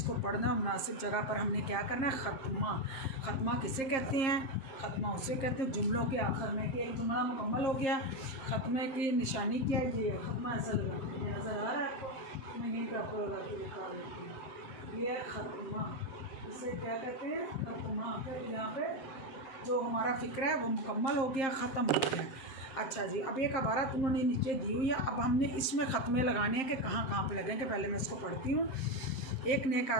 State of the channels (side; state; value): right; late; 7.6 ms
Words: पढ़ना मुनासिब जगह पर हमने क्या करना है, ख़त्मा। ख़त्मा किसे कहते हैं, ख़त्मा उसे कहते हैं जुमलों के आखिर में कि एक जुमला मुकम्मल हो गया, ख़त्मे की निशानी क्या है, ये ख़त्मा ऐसा लगा, ये नज़र आ रहा है आपको, मैं यहीं पर आपको लगा के दिखा देती हूँ, ये ख़त्मा, इसे क्या कहते हैं, ख़त्मा। फिर यहाँ पे जो हमारा फ़िक्र है वो मुकम्मल हो गया, ख़त्म हो गया। अच्छा जी, अब एक इबारत उन्होंने नीचे दी हुई है, अब हमने इसमें ख़त्मे लगाने हैं कि कहाँ कहाँ पे लगेंगे। पहले मैं इसको पढ़ती हूँ। एक नेक